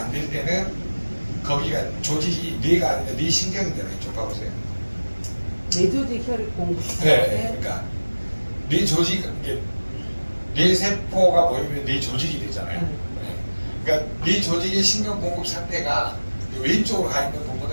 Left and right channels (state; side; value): inverted; both; correlation -1.00